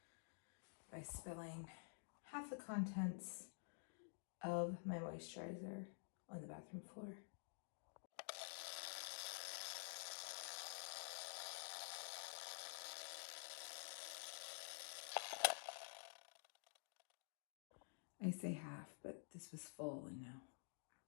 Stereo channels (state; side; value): silent; right; digital silence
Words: by spilling half the contents of my moisturizer on the bathroom floor. I say half, but this was full and now